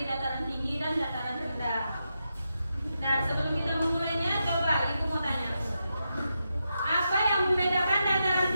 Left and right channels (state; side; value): inverted; both; correlation -0.86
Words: dataran tinggi dan dataran rendah. Nah, sebelum kita memulainya, coba Ibu mau tanya. Apa yang membedakan dataran